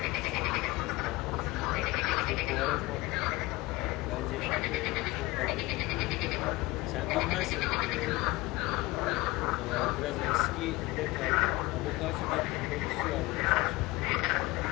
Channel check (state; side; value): quieter; right; 21.3 dB